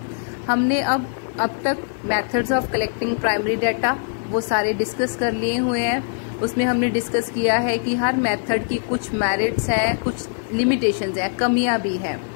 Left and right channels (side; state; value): right; silent; 56 dB below the other